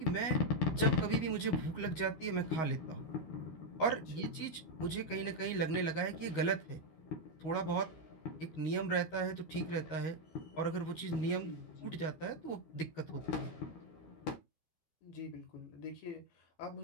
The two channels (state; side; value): late; right; 13 ms